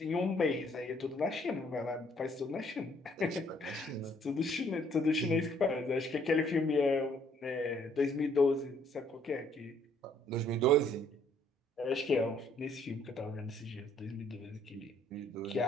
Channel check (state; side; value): normal; both; correlation 0.64